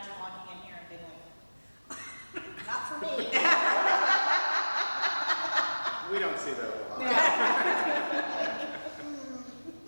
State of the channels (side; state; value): both; inverted; correlation -1.00